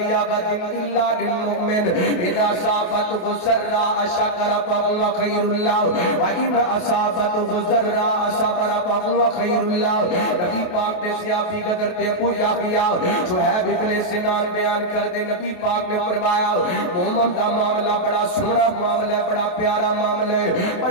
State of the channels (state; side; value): late; right; 28 ms